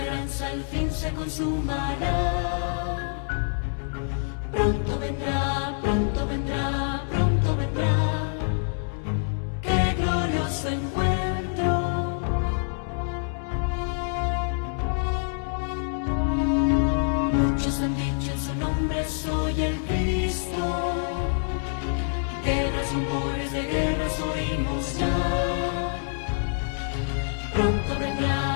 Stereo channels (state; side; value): silent; right; digital silence